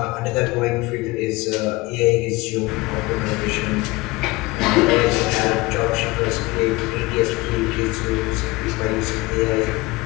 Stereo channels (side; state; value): right; quieter; 22.1 dB